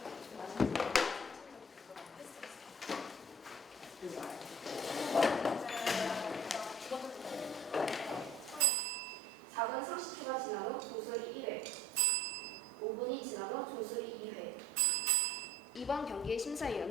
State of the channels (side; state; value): both; normal; correlation 0.49